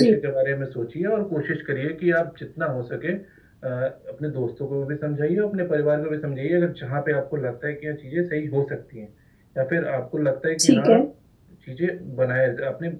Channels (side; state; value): both; identical; correlation 1.00